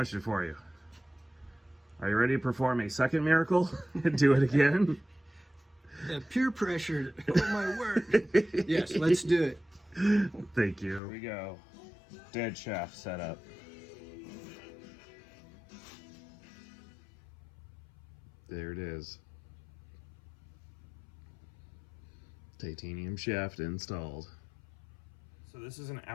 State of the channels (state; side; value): drops out; right; at 11.0 s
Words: for you. Are you ready to perform a second miracle and do it again? Peer pressure. Oh my word. Yes, let's do it. Thank you. Here we go. Dead shaft setup. There it is. Titanium shaft installed. So this is an